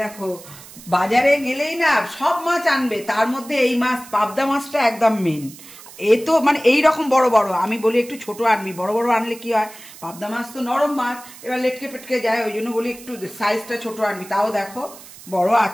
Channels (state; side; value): noise; right; hiss, 18 dB below the sound